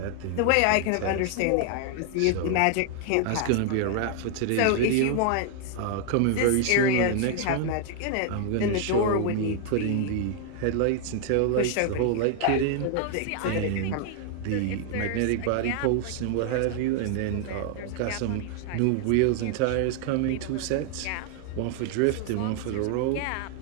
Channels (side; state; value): both; different; correlation 0.00